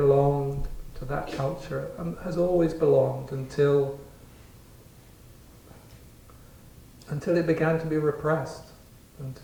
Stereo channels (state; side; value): identical; both; correlation 1.00